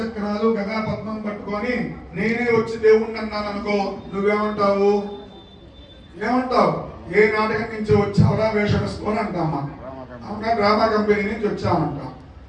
గదా పద్మం పట్టుకొని నేనే వచ్చి దేవుణ్ణి అన్నాను అనుకో, నువ్వేమంటావు? ఏమంటావు? ఏ నాటకం నుంచి వచ్చావురా వేషం వేసుకొని అంటామా? అవునా, డ్రామా కంపెనీ నుంచి వచ్చామంటాం.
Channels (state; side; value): identical; both; correlation 1.00